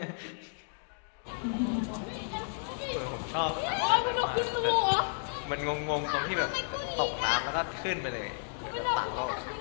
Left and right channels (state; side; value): silent; right; 56 dB below the other